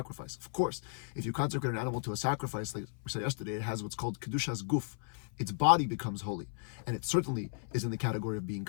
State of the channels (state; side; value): silent; right; 55 dB below the other